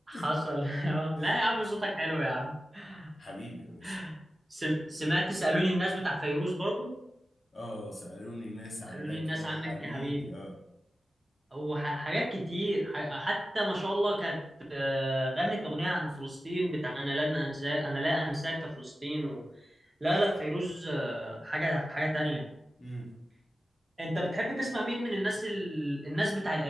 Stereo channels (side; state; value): both; normal; correlation 0.94